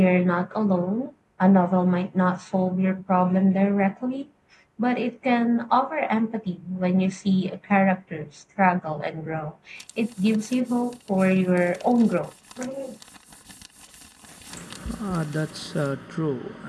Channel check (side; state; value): both; identical; correlation 1.00